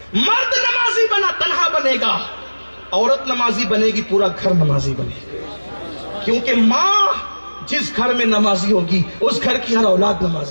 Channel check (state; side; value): inverted; both; correlation -1.00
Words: مرد نمازی بنا تنہا بنے گا، عورت نمازی بنے گی پورا گھر نمازی بنے گا، کیونکہ ماں جس گھر میں نمازی ہوگی اس گھر کی ہر اولاد